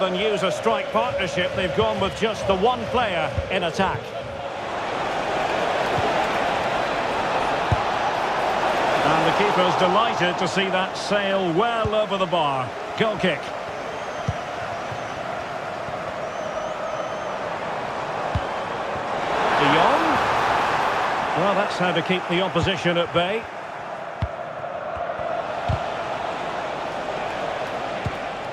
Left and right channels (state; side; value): identical; both; correlation 1.00